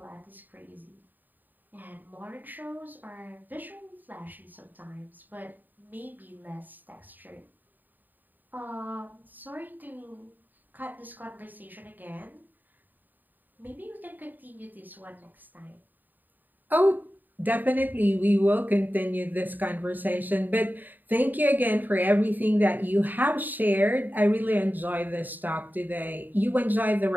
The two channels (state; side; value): late; left; 0.088 ms